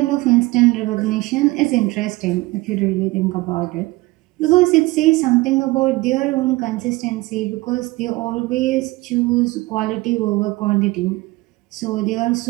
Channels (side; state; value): left; quieter; 21.0 dB